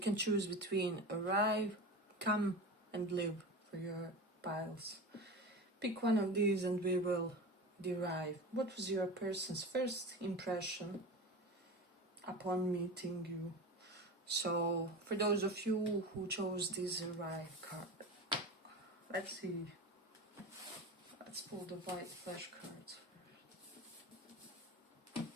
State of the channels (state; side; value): normal; both; correlation 0.29